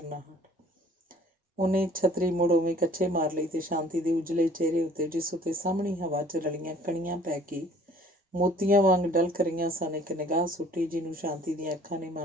ਉਹਨੇ ਛਤਰੀ ਮੁੜ ਉਵੇਂ ਕੱਛੇ ਮਾਰ ਲਈ ਤੇ ਸ਼ਾਂਤੀ ਦੇ ਉਜਲੇ ਚਿਹਰੇ ਉੱਤੇ, ਜਿਸ ਉੱਤੇ ਸਾਹਮਣੀ ਹਵਾ 'ਚ ਰਲੀਆਂ ਕਣੀਆਂ ਪੈ ਕੇ ਮੋਤੀਆਂ ਵਾਂਗ ਡਲਕ ਰਹੀਆਂ ਸਨ, ਇੱਕ ਨਿਗਾਹ ਸੁੱਟੀ, ਜਿਹਨੂੰ ਸ਼ਾਂਤੀ ਦੀਆਂ ਅੱਖਾਂ ਨੇ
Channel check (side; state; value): both; normal; correlation 0.54